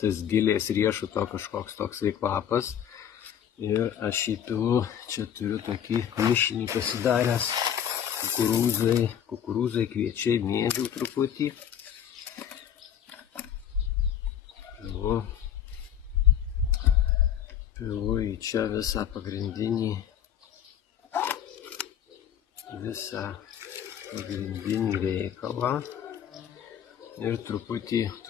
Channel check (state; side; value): quieter; right; 9.2 dB